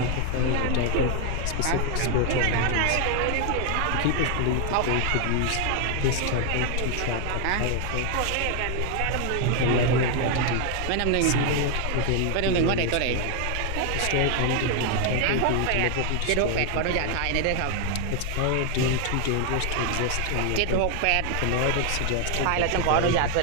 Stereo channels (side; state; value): both; different; correlation 0.00